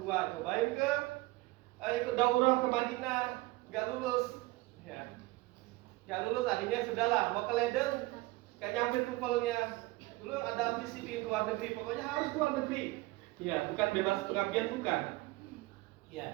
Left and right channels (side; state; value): left; quieter; 20.9 dB